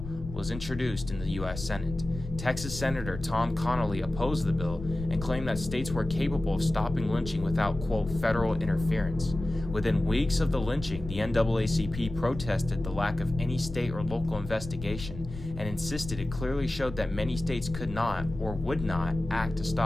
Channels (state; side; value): noise; left; rumble, 10 dB below the sound